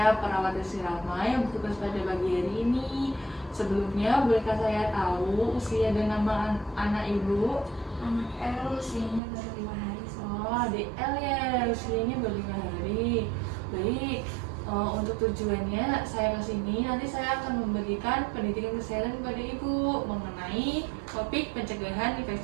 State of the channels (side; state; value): left; drops out; at 9.2 s